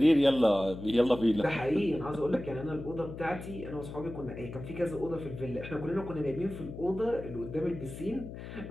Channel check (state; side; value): noise; left; hum, 11 dB below the sound